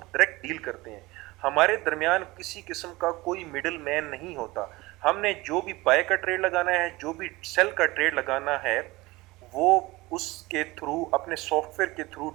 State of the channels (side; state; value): left; quieter; 21.1 dB